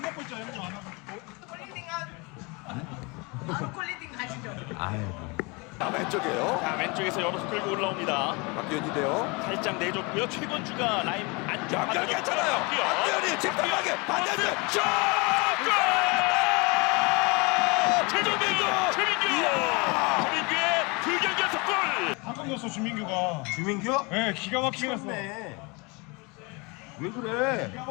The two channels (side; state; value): right; quieter; 28.5 dB